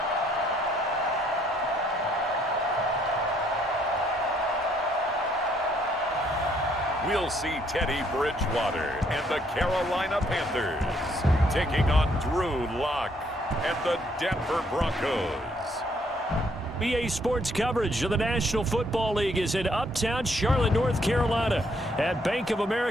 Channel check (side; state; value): both; normal; correlation 0.68